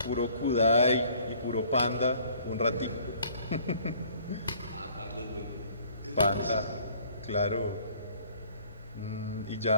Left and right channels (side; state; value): both; inverted; correlation -0.56